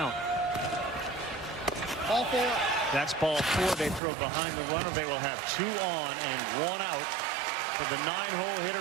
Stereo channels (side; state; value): left; drops out; at 4.0 s